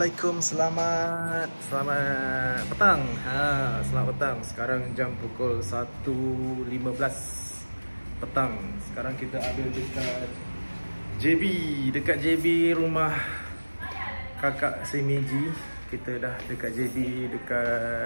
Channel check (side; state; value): both; inverted; correlation -1.00